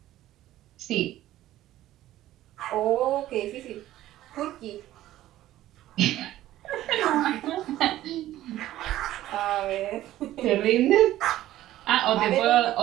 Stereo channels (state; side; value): quieter; left; 14.3 dB